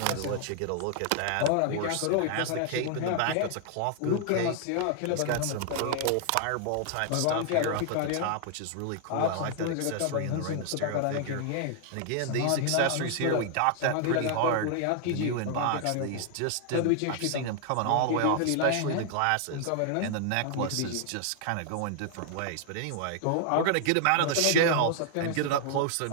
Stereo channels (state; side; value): different; both; correlation 0.00